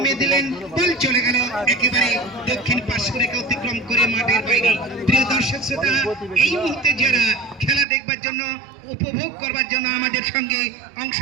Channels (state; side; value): drops out; left; at 7.9 s